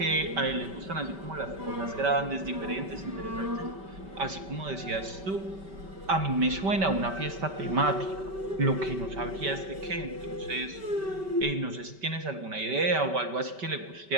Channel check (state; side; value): late; left; 5.2 ms